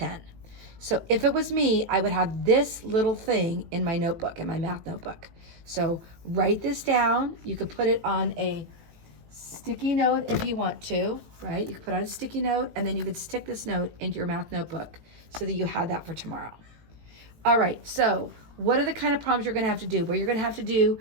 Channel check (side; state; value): left; late; 18 ms